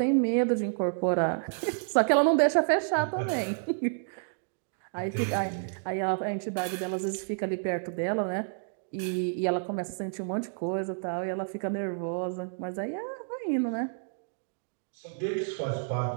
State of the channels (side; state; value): left; silent; digital silence